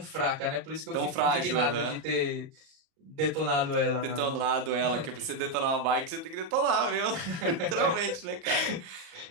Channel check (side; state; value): left; late; 38 ms